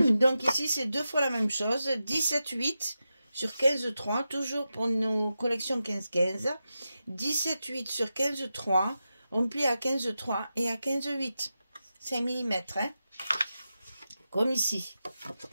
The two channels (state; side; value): inverted; both; correlation -0.91